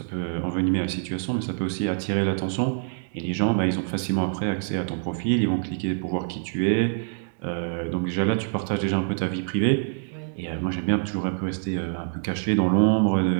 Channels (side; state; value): left; silent; digital silence